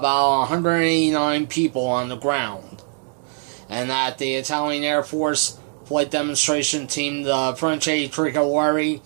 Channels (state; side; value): silent; left; 59 dB below the other